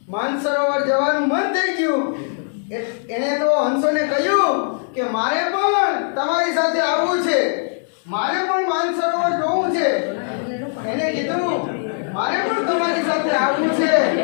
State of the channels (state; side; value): silent; right; digital silence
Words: માનસરોવર જવાનું મન થઈ ગયું. એણે તો હંસોને કહ્યું કે મારે પણ તમારી સાથે આવવું છે, મારે પણ માનસરોવર જોવું છે. એને કીધું મારે પણ તમારી સાથે આવવું છે,